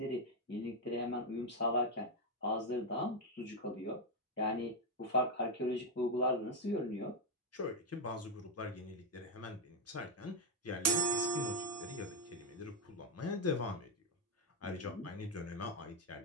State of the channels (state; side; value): normal; both; correlation 0.03